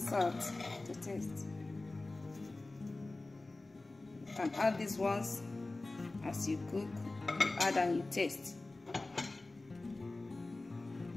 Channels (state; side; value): quieter; right; 3.1 dB